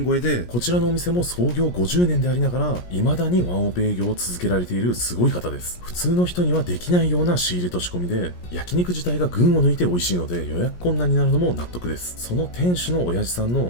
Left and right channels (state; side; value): late; right; 17 ms